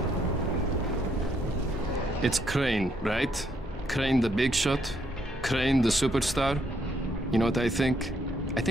It's Crane, right? Crane the big shot? Crane the superstar? You know what I think? I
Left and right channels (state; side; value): normal; both; correlation 0.73